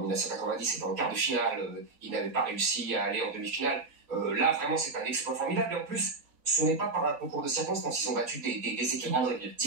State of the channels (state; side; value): quieter; left; 3.6 dB